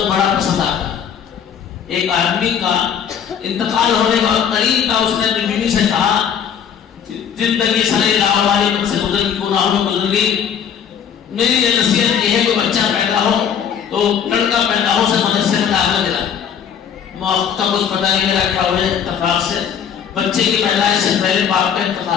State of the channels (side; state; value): right; quieter; 8.1 dB